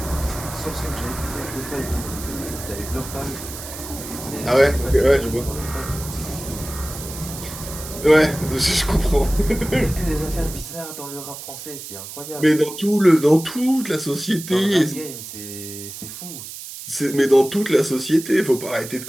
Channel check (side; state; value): right; noise; hiss, 11 dB below the sound